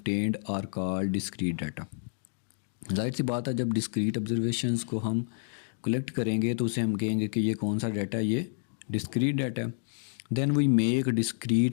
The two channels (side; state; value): right; silent; digital silence